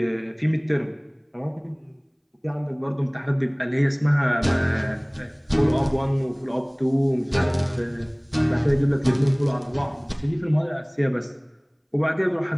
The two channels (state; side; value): identical; both; correlation 1.00